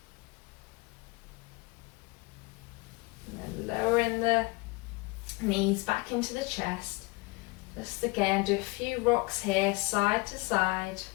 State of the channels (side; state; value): right; quieter; 25.2 dB